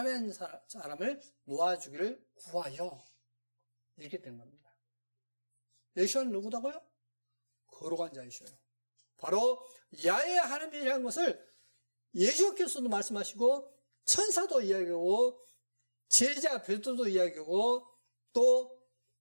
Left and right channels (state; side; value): inverted; both; correlation -1.00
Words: 사람을 놓아주기를 구하여 이렇게 된 겁니다. 예수는 누구다고요? 거룩한 자이셔요. 바로 야훼 하나님이라는 것을 예수께서도 말씀하시고 천사도 이야기하고 제자 베드로도 이야기하고 또